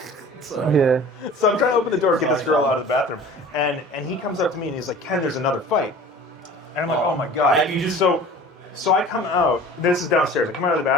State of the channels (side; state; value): both; normal; correlation 0.43